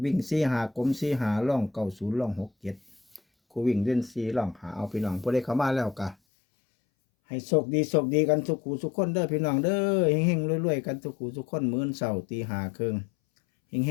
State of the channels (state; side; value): drops out; right; at 6.2 s